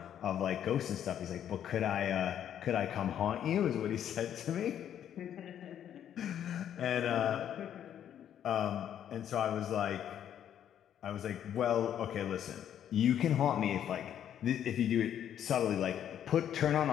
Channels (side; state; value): right; quieter; 9.9 dB